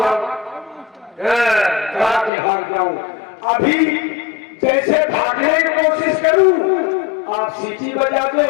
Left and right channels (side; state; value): right; drops out; at 2.3 s